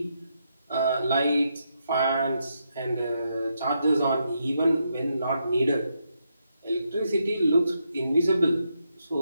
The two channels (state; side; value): inverted; both; correlation -0.80